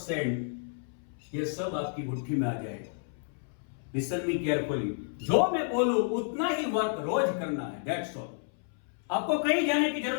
ये सब आपकी मुट्ठी में आ जाएगा. Listen me carefully. जो मैं बोलूं उतना ही वर्क रोज करना है. That's all. आपको कहीं जाने की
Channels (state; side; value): silent; right; 57 dB below the other